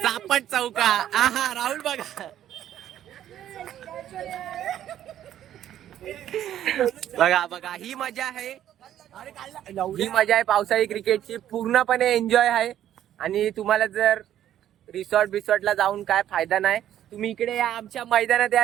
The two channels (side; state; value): left; quieter; 11.4 dB